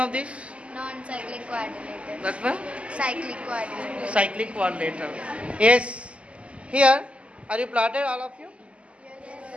this? Non-cyclic quadrilateral. That one? Cyclic quadrilateral. Cyclic quadrilateral. Yes. Here, are you plotted, all of you? Yes,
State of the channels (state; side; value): late; left; 0.059 ms